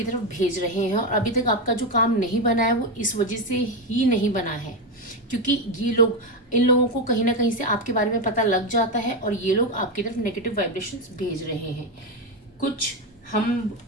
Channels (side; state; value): both; normal; correlation 0.11